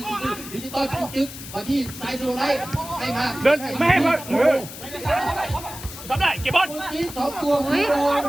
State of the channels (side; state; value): left; noise; hiss, 12 dB below the sound